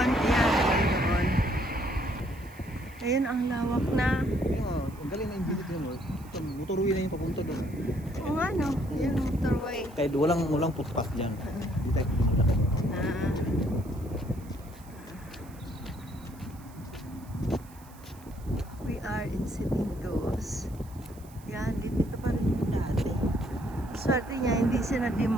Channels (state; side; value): noise; right; hiss, 24 dB below the sound